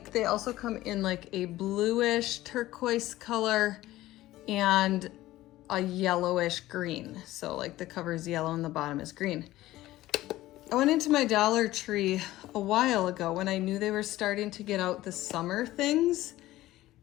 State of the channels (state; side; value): quieter; right; 16.1 dB